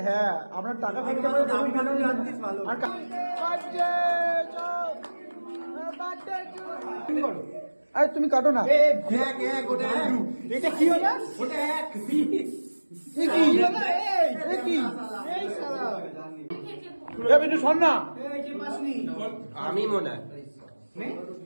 হ্যাঁ, আমরা টাকা খরচা করে দাম ভালো জানতিস ভালো। আর আরে তুমি কাটো না। এটা কি হলো? ওটা এক পিস। এ কি হলো? এ কি? এই শালা। এ বিটু শোন না। এই কি পাসনি? আমি মনে হয়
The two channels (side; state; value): both; inverted; correlation -1.00